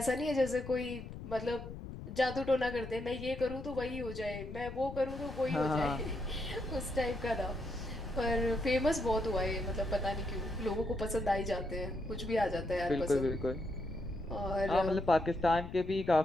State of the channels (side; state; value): left; noise; rumble, 10 dB below the sound